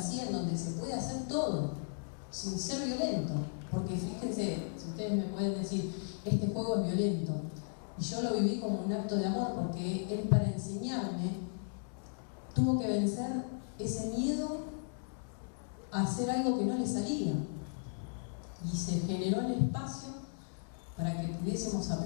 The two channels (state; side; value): silent; right; digital silence